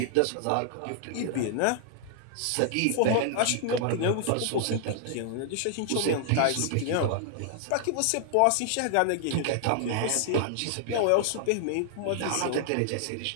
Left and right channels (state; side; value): different; both; correlation -0.01